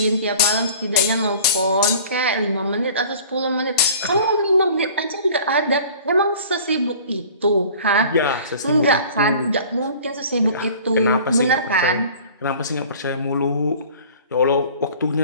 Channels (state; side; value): inverted; both; correlation -0.46